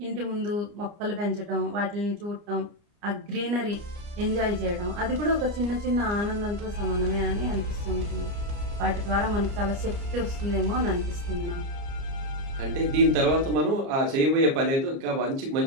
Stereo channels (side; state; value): left; late; 29 ms